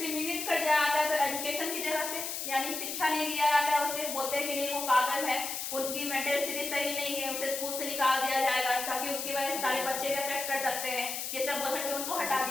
कर दिया जाता है तो एजुकेशन की जगह से, यानी शिक्षा नहीं दिया जाता है, उसे बोलते हैं कि नहीं वो पागल है, उनकी मेंटल स्थिति सही नहीं है, उसे स्कूल से निकाल दिया जाएगा ताकि उसकी वजह से सारे बच्चे भी अफेक्ट कर सकते हैं, ये सब बोल करके उनको हटा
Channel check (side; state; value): left; noise; hiss, 4 dB below the sound